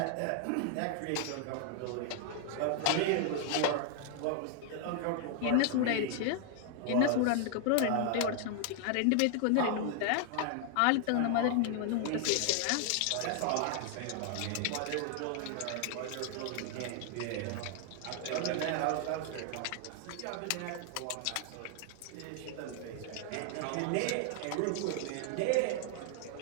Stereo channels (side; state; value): both; different; correlation 0.00